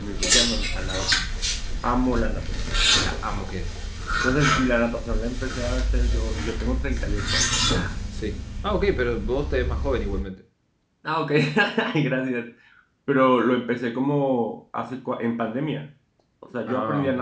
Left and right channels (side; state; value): both; identical; correlation 1.00